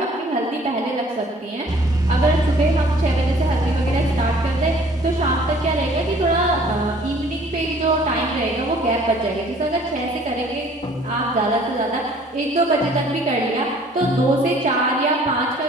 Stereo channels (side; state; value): both; normal; correlation 0.55